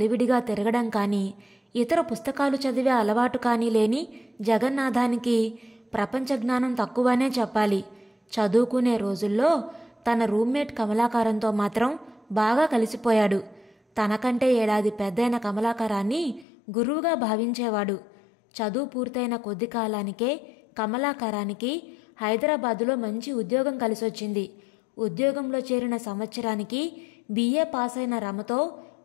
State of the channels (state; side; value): drops out; right; at 16.4 s